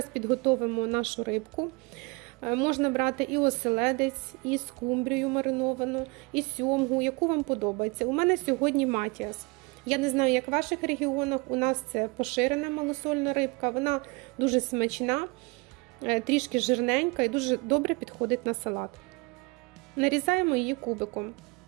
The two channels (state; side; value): quieter; left; 27.5 dB